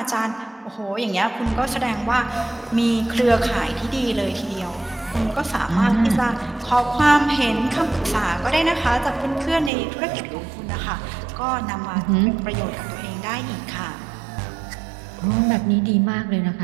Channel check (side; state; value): left; drops out; at 9.7 s